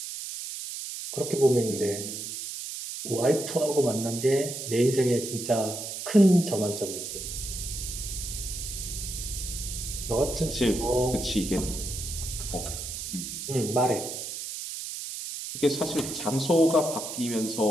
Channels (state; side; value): noise; right; hiss, 7 dB below the sound